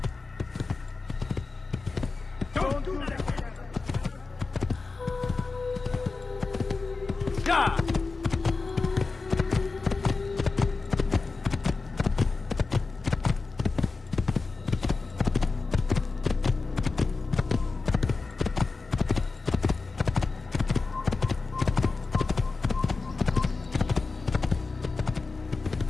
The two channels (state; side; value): quieter; right; 4.0 dB